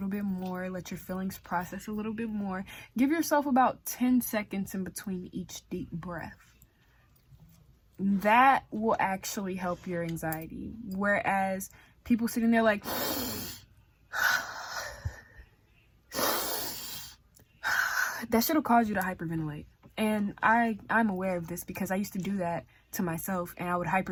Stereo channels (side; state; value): both; identical; correlation 1.00